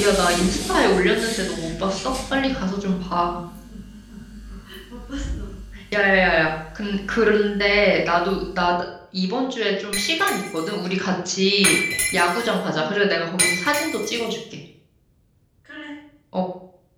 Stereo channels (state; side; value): identical; both; correlation 1.00